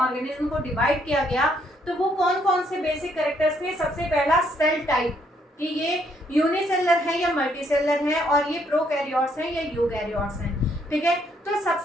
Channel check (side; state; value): both; normal; correlation 0.71